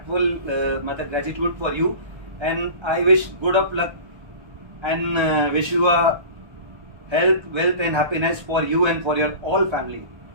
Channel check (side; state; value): left; late; 1.3 ms